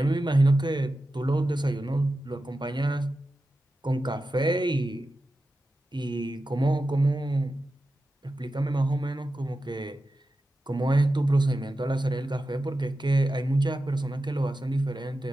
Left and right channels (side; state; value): both; normal; correlation 0.91